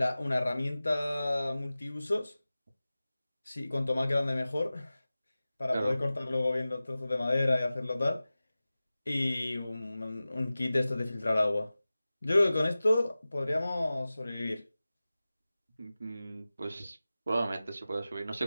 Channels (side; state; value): both; inverted; correlation -0.96